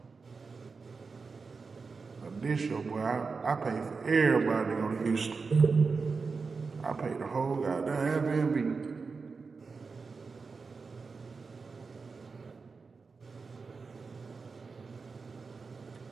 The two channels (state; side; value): quieter; left; 4.7 dB